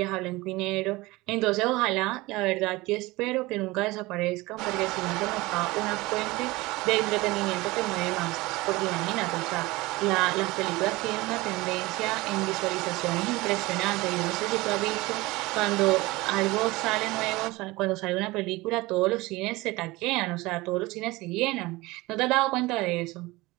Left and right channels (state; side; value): quieter; left; 21.2 dB